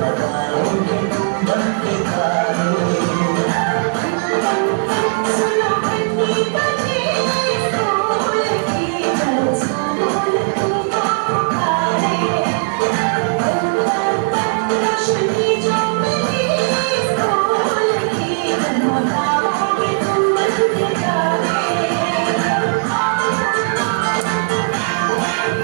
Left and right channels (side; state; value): left; silent; digital silence